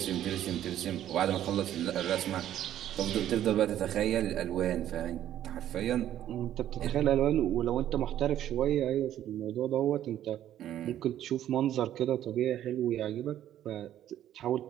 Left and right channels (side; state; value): left; quieter; 11.7 dB